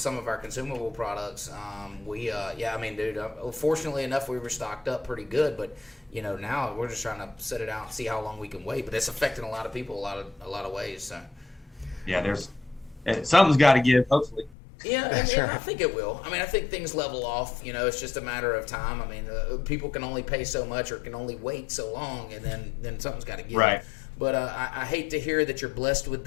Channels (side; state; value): right; drops out; at 14.6 s